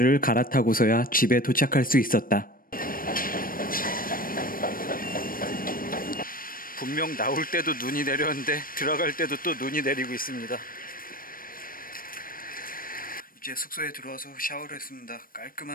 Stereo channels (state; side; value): late; right; 0.41 ms